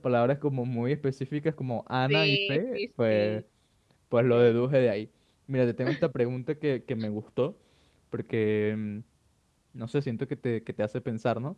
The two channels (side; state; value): both; identical; correlation 1.00